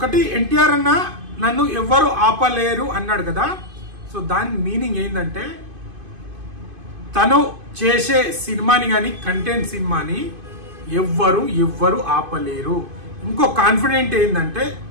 ఎన్టీఆర్ అన్న నన్ను ఎవ్వరు ఆపలేరు అన్నాడు కదా, సో దాని మీనింగ్ ఏంటంటే తను చేసే సినిమాని కానీ కంటెంట్ సినిమాని ఎవ్వరు ఆపలేరు. ఇంకో కాన్ఫిడెంట్ ఏంటంటే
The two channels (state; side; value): late; left; 2.5 ms